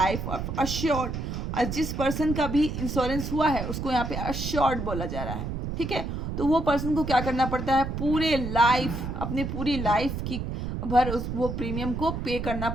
of assured. और जिस पर्सन का भी इंश्योरेंस हुआ है उसको यहाँ पे अश्योर्ड बोला जा रहा है. ठीक है, तो वो पर्सन को क्या करना पड़ता है, पूरे लाइफ, अपनी पूरी लाइफ की भर वो प्रीमियम को पे करना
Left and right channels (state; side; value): noise; right; rumble, 4 dB below the sound